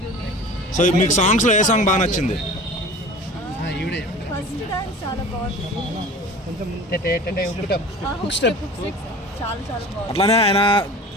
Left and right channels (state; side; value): normal; both; correlation 0.40